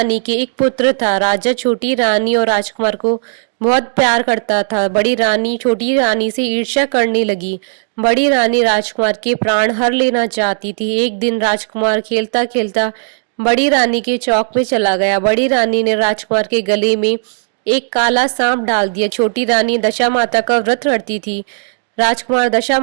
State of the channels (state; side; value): silent; left; digital silence